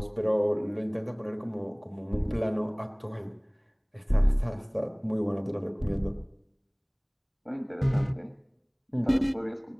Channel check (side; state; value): both; identical; correlation 1.00